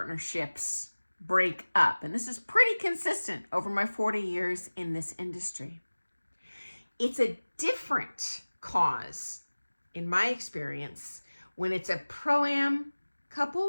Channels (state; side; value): inverted; both; correlation -1.00